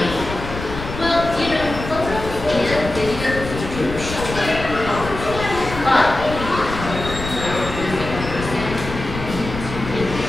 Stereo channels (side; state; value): left; noise; rumble, 8 dB below the sound